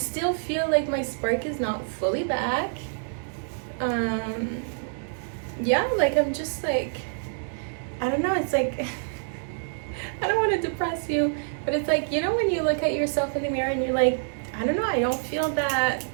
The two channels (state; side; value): silent; left; digital silence